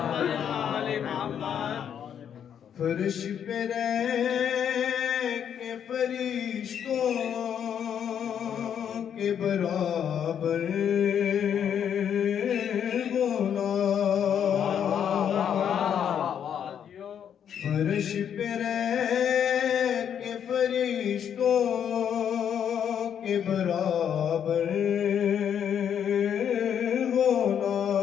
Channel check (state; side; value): quieter; right; 8.7 dB